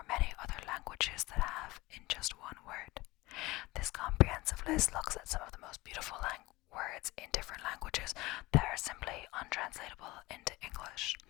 many other languages that have in just one word. This comprehensive list looks at some of the most beautiful words in different languages that are simply untranslatable into English,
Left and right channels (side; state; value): right; quieter; 20.6 dB